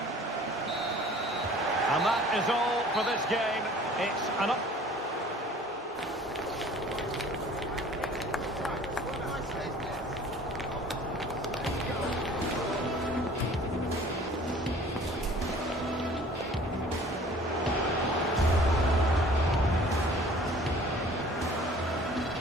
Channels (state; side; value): normal; both; correlation 0.49